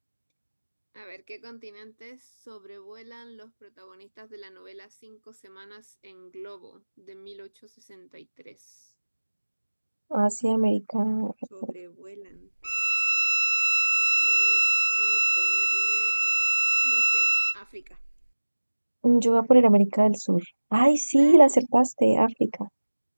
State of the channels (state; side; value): inverted; both; correlation -1.00